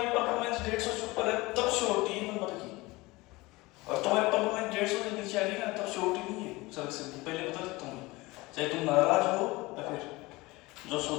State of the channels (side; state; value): right; quieter; 21.8 dB